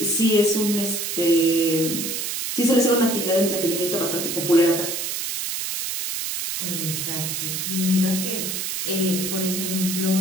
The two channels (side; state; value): right; noise; hiss, 3 dB below the sound